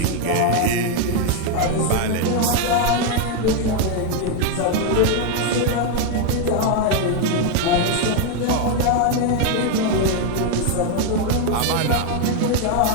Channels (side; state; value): both; different; correlation 0.01